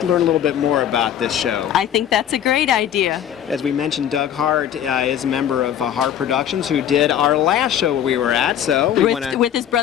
learn a little bit more about this show? I think that's a great idea. As we mentioned, Doug Hart is a member of Hart Productions, who did our last show we were at. So with his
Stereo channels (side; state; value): right; quieter; 10.0 dB